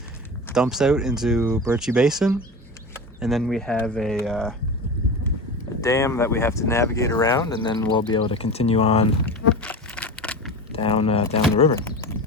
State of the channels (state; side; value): normal; both; correlation 0.28